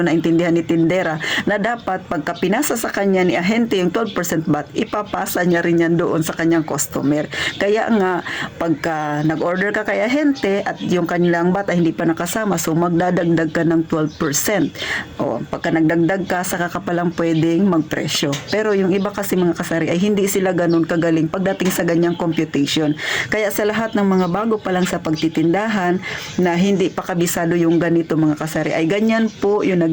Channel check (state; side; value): identical; both; correlation 1.00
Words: naintindihan ni tindera na dapat pagka pinasa sa kanya ni ahente yung 12% VAT, ipapasa niya rin yan doon sa kanyang customer. Kaya nga, pagka nag-order ka kay ahente at yung kanilang VAT ay hindi pa nakasama, so magdadagdag ka ng 12%. O, pagka nagdagdag ka, saka ka palang pwedeng magpresyo. Pero yung iba kasi mga kasari ay hindi sila ganun kagaling pagdating sa ganyang computation. Kaya sa lahat ng mga bago pa lang sa pagtitindahan na hindi pa kabisado yung ganito mga kasari, ay ganyan po yung